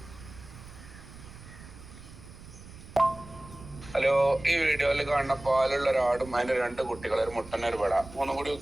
ഹലോ, ഈ വീഡിയോയിൽ കാണുന്ന പാലുള്ള ഒരാടും അതിന്റെ 2 കുട്ടികൾ, ഒരു മുട്ടന് ഒരു പെട, 3 കൂടി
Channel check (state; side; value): noise; right; rumble, 17 dB below the sound